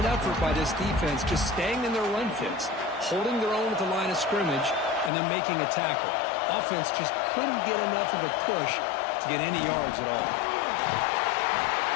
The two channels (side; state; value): right; drops out; at 5.1 s